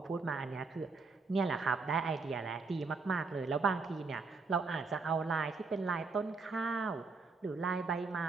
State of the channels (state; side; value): quieter; left; 4.3 dB